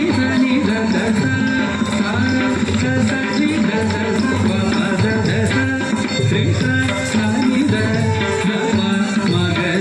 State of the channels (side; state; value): both; identical; correlation 1.00